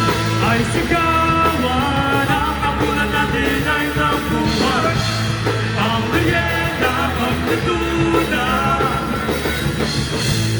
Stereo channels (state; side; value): identical; both; correlation 1.00